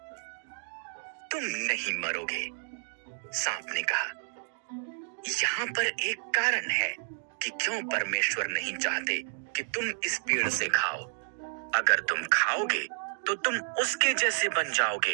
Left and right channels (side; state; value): left; silent; digital silence